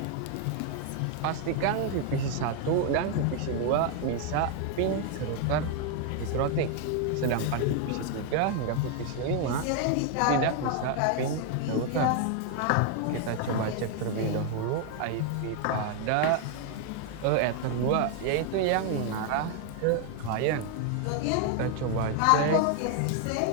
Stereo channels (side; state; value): both; different; correlation 0.01